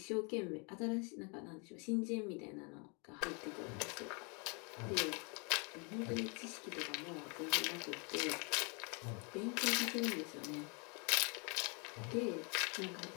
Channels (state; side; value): quieter; right; 33.8 dB